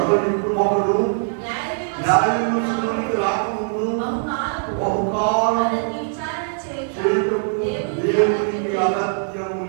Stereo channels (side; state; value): left; silent; digital silence